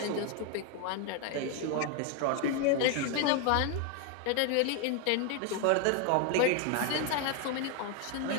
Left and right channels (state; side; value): different; both; correlation 0.01